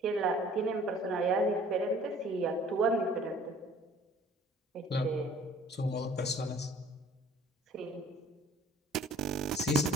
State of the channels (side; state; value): both; normal; correlation 0.53